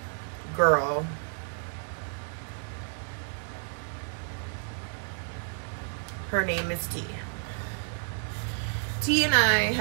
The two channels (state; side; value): silent; left; 58 dB below the other